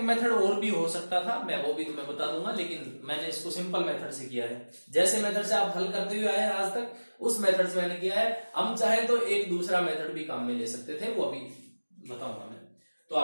मेथड और भी हो सकता था, मैं वो भी तुम्हें बता दूंगा, लेकिन मैंने इसको सिंपल मेथड से किया है। जैसे मेथड से आप हल करते हुए आए हैं आज तक, उस मेथड से मैंने किया है। हम चाहे तो एक दूसरा मेथड भी काम में ले सकते थे, वो अभी बताऊंगा मैं। तो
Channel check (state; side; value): inverted; both; correlation -1.00